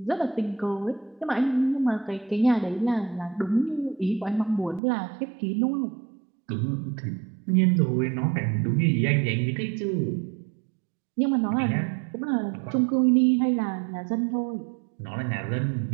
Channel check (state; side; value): drops out; left; at 4.8 s